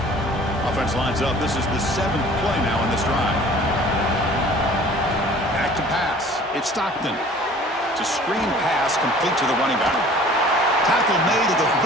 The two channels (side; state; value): both; normal; correlation 0.49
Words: Offense lines up. This is the 7th play now in this drive. Back to pass. It's Stockton. It's a screen pass complete to the running back. Tackle made at the